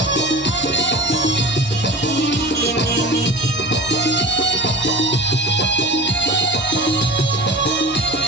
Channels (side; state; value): both; normal; correlation 0.35